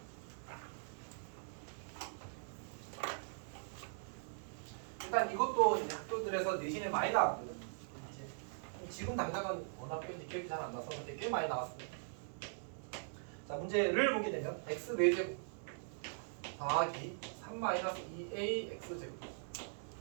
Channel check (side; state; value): left; silent; digital silence